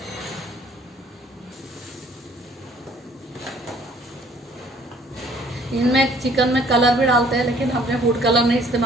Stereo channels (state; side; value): normal; both; correlation 0.58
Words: इनमें चिकन में कलर भी डालते हैं, लेकिन हमने फूड कलर नहीं